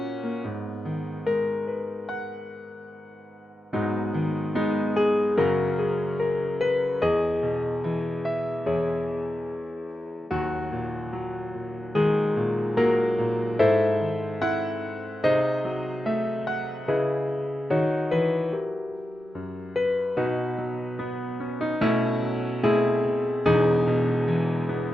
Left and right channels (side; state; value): both; normal; correlation 0.90